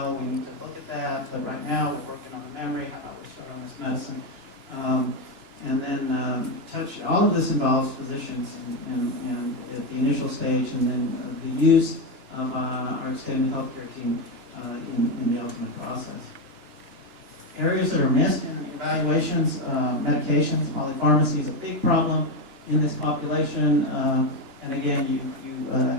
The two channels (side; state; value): left; late; 2.9 ms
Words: we need to look at that, but right now we're working on the memory. How about we start on this medicine? And then all of this involves physicians and at the initial stage, and then the use of our extended healthcare team in the ultimate process. Areas that are missed in evaluations, medications, polypharmacy is a big problem in this population. And again, you